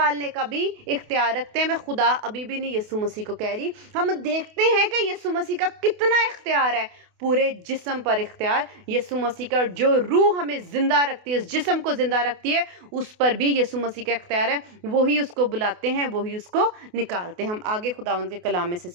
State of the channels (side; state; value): left; late; 28 ms